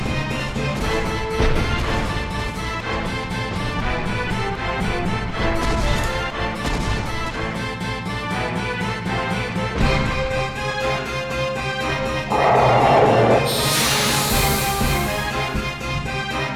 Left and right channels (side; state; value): both; identical; correlation 1.00